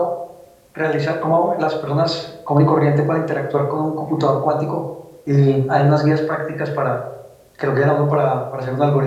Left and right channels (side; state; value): both; identical; correlation 1.00